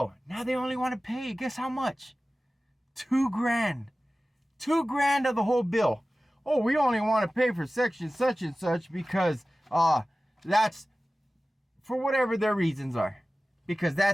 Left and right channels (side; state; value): both; normal; correlation 0.96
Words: Now they only want to pay, guess how much? $2,000. $2,000 of the whole bill. Oh, we only want to pay for section such and such because that's for whatever their reasons are, because